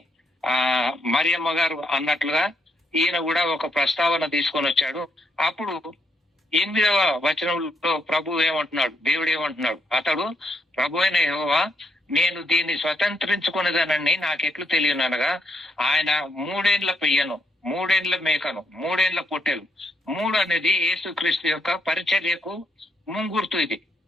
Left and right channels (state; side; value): normal; both; correlation 0.77